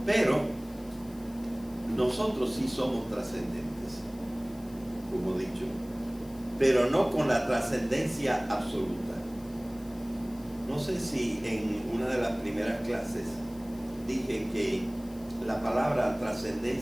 Pero nosotros sí somos trascendentes, como he dicho, pero no con la trascendencia absoluta. No sé si en una de las primeras clases dije que la palabra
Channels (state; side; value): noise; left; hiss, 24 dB below the sound